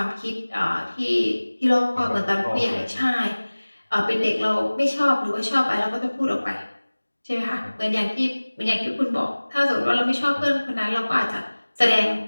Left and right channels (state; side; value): inverted; both; correlation -1.00